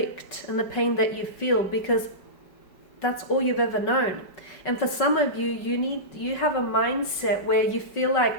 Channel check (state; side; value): late; right; 5.3 ms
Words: and the pain that you feel, because that's all you've ever known. And for some of you, you have a mindset where you feel like